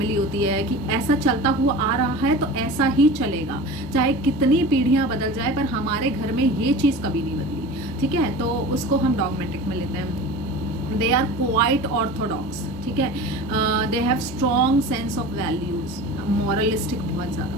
होती है कि ऐसा चलता हुआ आ रहा है तो ऐसा ही चलेगा, चाहे कितनी पीढ़ियाँ बदल जाए, पर हमारे घर में ये चीज़ कभी नहीं बदली. ठीक है, तो उसको हम डॉगमेटिक में लेते हैं. They are quite orthodox. ठीक है, they have strong sense of values. Moralistic, बहुत ज़्यादा,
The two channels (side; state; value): both; normal; correlation 0.35